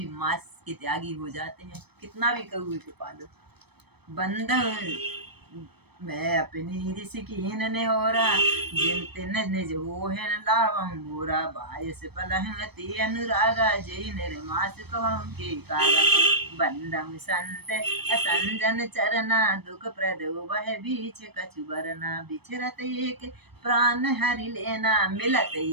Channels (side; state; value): left; late; 0.97 ms